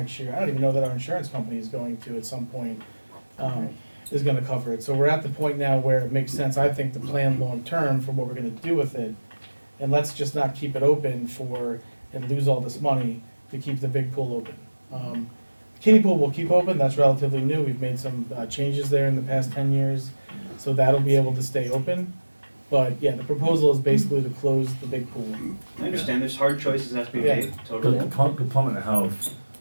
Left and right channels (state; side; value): inverted; both; correlation -1.00